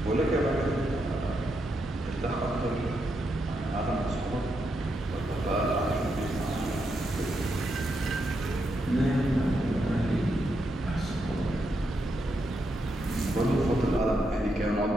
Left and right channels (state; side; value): normal; both; correlation 0.82